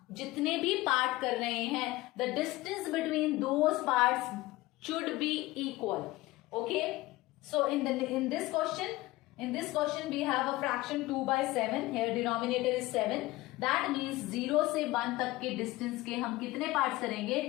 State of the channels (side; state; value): right; quieter; 18.9 dB